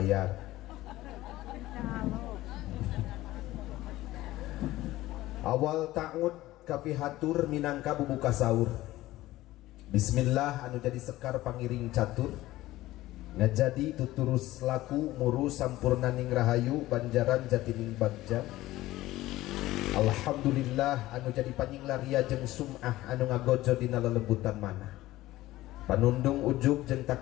Awal ta'ud kapihatur minangka bubuka sahur. Bismillah anu jadi sekar pangiring catur, ngajadi tuturus laku muru sampurnaning rahayu banjaran jatining bagja. Alhamdulillah anu jadi panyinglaria jeung sum'ah anu ngagojo dina lelembutan manah. Panundung ujug jeung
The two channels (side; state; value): right; quieter; 16.6 dB